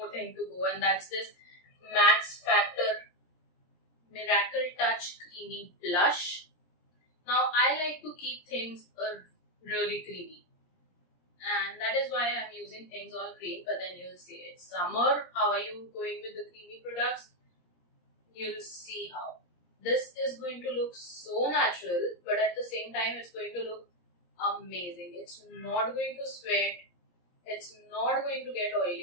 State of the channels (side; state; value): right; late; 17 ms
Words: thing to go, and that's this Max Factor Miracle Touch Creamy Blush. Now I like to keep things really creamy, and that is why I'm using things all cream. But then you'll see it's summer. How are you going with the creamy products? You'll see how. This is going to look so natural, but at the same time it's going to look amazing. It's not going to sweat. It's not going to get